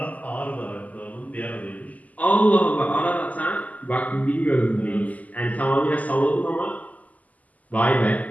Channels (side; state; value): right; late; 0.076 ms